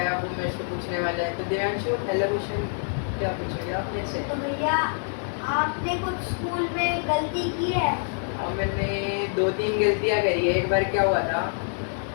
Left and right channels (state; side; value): silent; right; 61 dB below the other